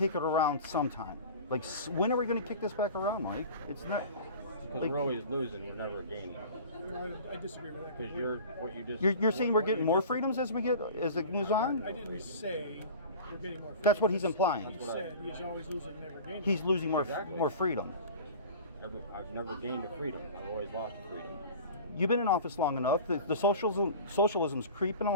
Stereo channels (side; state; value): both; inverted; correlation -0.38